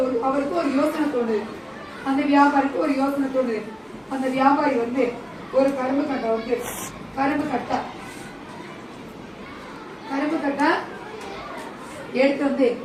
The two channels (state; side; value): identical; both; correlation 1.00